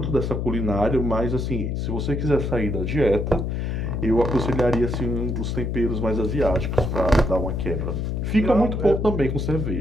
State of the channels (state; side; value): noise; left; hum, 1 dB below the sound